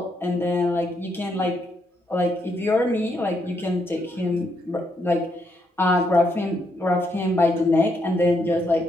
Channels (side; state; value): both; normal; correlation 0.77